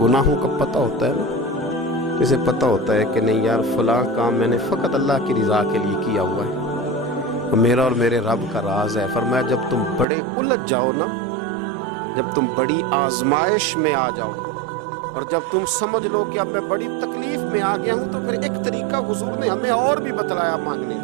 का पता होता है ना, इसे पता होता है कि नहीं यार फ़लाँ काम मैंने फ़कत अल्लाह की रज़ा के लिए किया हुआ है, वो मेरा और मेरे रब का राज है। फरमाया जब तुम बड़े उलझ जाओ ना, जब तुम बड़ी आजमाइश में आ जाओ और जब तुम समझ लो कि अब मैं बड़ी तकलीफ में आ गया हूँ, तो फिर एक तरीका हुजूर ने हमें और भी बतलाया मांगने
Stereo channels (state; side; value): drops out; left; at 10.1 s